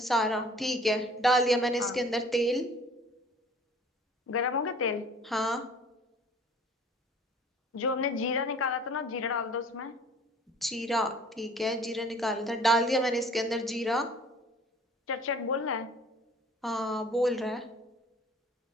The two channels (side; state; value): both; normal; correlation 0.50